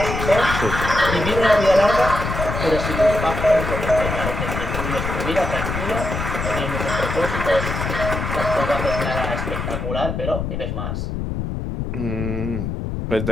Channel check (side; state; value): left; noise; rumble, 3 dB below the sound